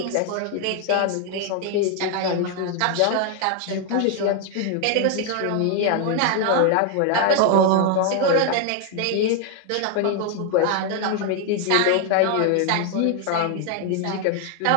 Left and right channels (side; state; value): both; different; correlation 0.01